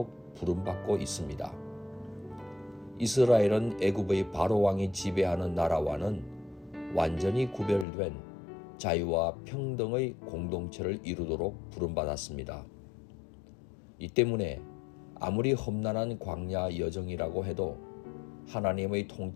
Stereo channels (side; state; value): right; drops out; at 7.9 s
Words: 부름받고 있습니다. 이스라엘은 애굽의 바로 왕이 지배하는 나라와는 완전히 구별된 자유와 평등의 공동체를 이루도록 부름받았습니다. 이 때문에 아무리 험난한 광야 여정이라고 해도 하나님의